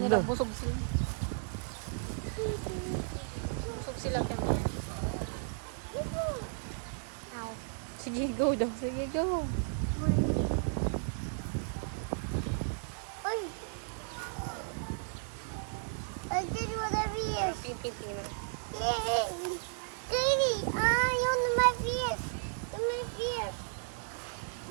busog sila. Busog sila ito. Ito. Sige, go daw. Sige, go. Uy. I did whatever it is. Pipiting lang. Yay! Katie, yun na my fish. Yun my fish.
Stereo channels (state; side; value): silent; left; 55 dB below the other